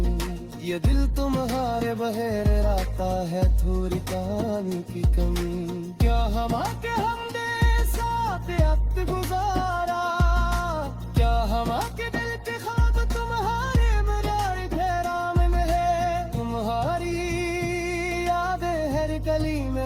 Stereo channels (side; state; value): both; identical; correlation 1.00